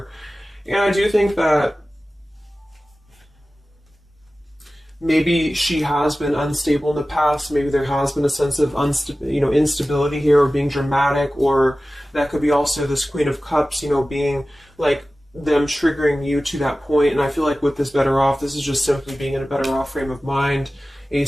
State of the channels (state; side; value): normal; both; correlation 0.96